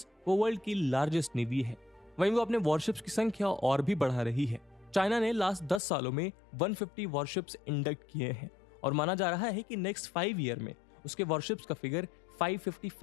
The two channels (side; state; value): right; drops out; at 5.8 s